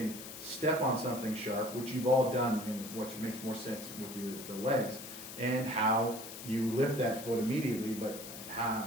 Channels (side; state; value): left; noise; hiss, 11 dB below the sound